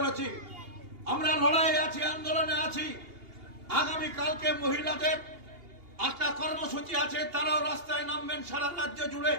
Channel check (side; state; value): left; late; 2.8 ms